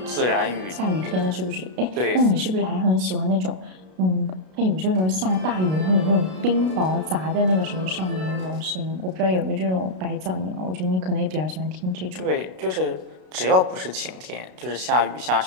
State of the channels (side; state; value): left; late; 32 ms